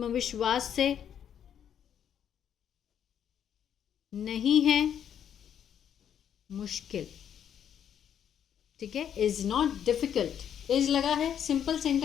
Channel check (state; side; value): quieter; right; 9.1 dB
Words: से नहीं है मुश्किल। ठीक है, इज़ नॉट डिफ़िकल्ट, इज़ लगा है, सिंपल